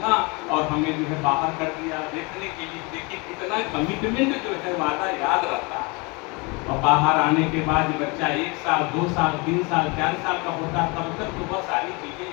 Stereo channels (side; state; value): right; quieter; 28.0 dB